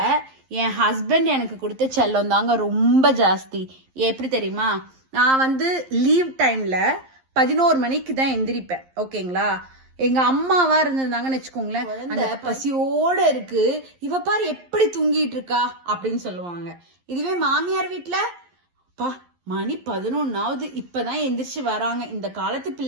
என் ஹஸ்பண்ட் எனக்கு கொடுத்த செல்லம் தாங்க ரொம்ப ஜாஸ்தி. எப்படி தெரியுமா? நான் லீவ் டைம்ல 11 மணிக்கு தான் எந்திரிப்பேன். ஓகேங்களா? எங்க அம்மாவா இருந்திருந்தாங்கன்னு வச்சுக்கோங்களேன், அந்த பசியோட இருக்கு, இவ பாரு எப்படி தூங்கிட்டு இருக்கா அப்படின்னு சொல்லுவாங்க. இதுவே மாமியார் வீட்டுல, பா மணி 11ஆவது இப்பதான் எந்திரிச்சு வராங்க, இந்த காலத்து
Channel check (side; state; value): left; late; 11 ms